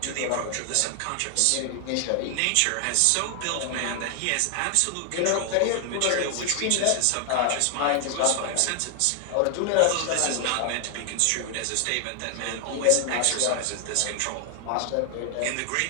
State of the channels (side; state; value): both; different; correlation 0.00